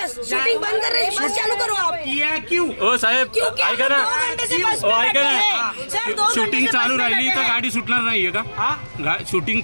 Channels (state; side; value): inverted; both; correlation -1.00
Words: शूटिंग बंद कर रहे हैं, बस चालू करो आप। किया क्यों? ओ साहेब क्योंकि हम ऐका ना, 2 घंटे से बस ओ में ऐका बैठे ना, हैं। सर, 2 घंटे शूटिंग से चालू बस में राहिली तर बैठे गाडी सुटणार नाहीये का? हा? शूटिंग